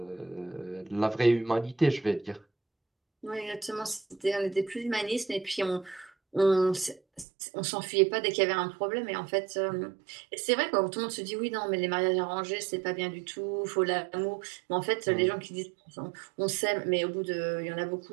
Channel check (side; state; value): left; drops out; at 7.2 s